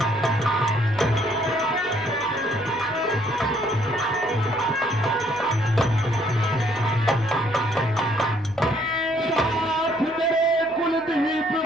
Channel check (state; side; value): noise; left; hum, 24 dB below the sound